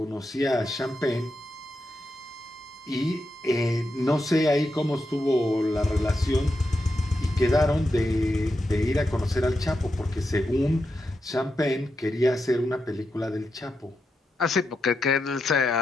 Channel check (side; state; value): both; normal; correlation 0.86